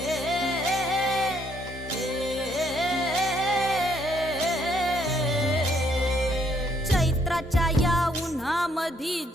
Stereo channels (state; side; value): normal; both; correlation 0.70